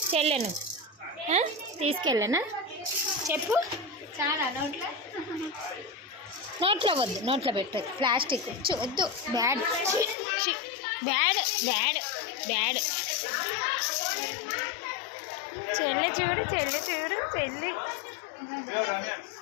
చెల్లెను తీసుకెళ్ళానా? చెప్పు. చాలా నోట్లో నోట్లో వద్దు, నోట్లో పెట్టదు. ప్లాస్టిక్ వద్దు. Bad bad bad bad. చెల్లి చూడు చెల్లి చూడు చెల్లి.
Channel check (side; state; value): right; drops out; at 10.2 s